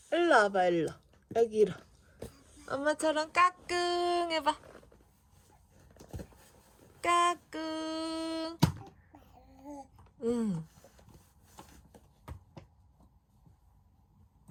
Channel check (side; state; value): both; identical; correlation 1.00